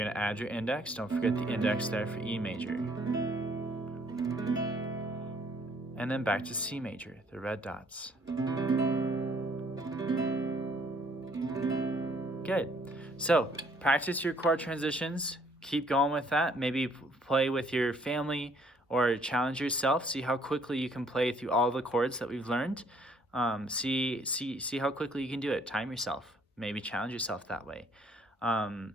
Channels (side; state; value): both; normal; correlation 0.63